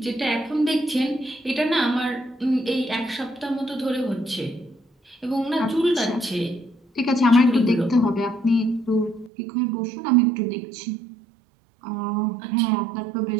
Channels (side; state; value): left; drops out; at 9.3 s